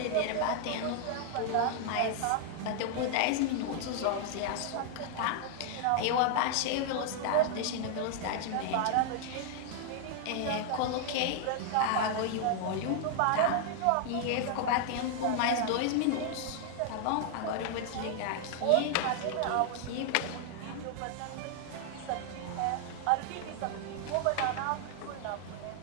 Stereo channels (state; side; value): different; both; correlation 0.00